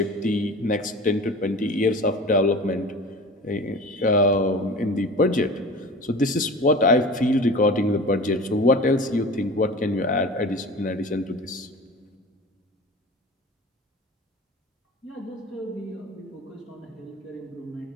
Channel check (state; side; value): normal; both; correlation 0.37